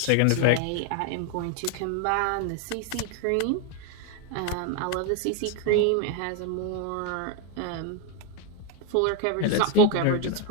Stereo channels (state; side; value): different; both; correlation 0.01